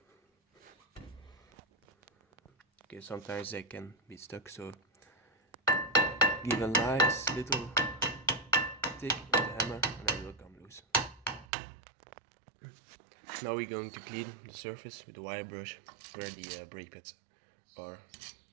Okay, sometimes they can be stuck, so give a nice little tick with the hammer and then it will come loose. Now we're going to clean the surface with the wire brush where the brake pads are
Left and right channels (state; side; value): drops out; left; at 11.5 s